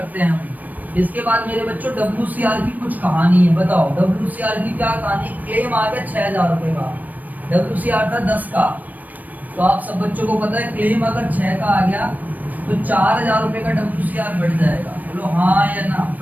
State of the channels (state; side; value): late; left; 0.081 ms